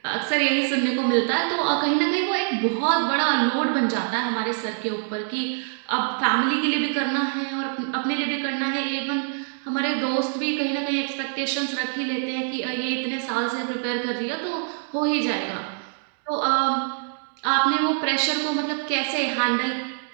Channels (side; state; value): left; silent; 62 dB below the other